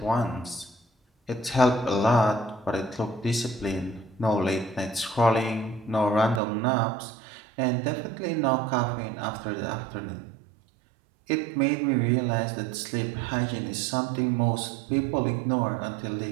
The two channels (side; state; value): left; drops out; at 6.4 s